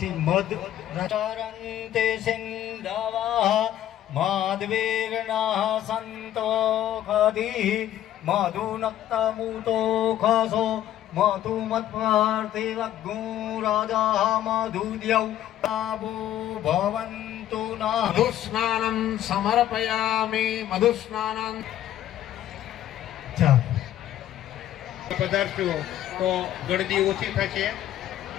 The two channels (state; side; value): quieter; right; 12.1 dB